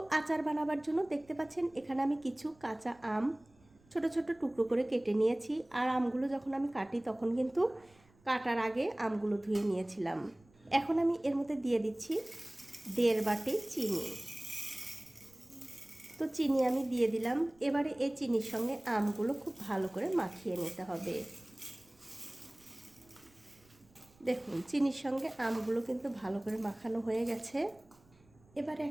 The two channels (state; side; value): noise; right; rumble, 30 dB below the sound